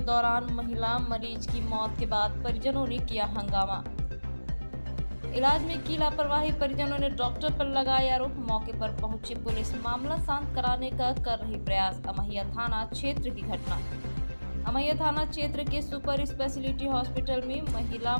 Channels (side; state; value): both; inverted; correlation -1.00